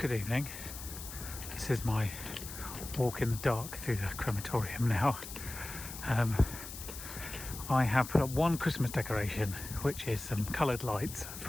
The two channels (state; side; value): noise; left; hiss, 11 dB below the sound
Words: evening. This is my walk in the dark through the crematorium now. I have put up one Christmas decoration, which is some coloured lights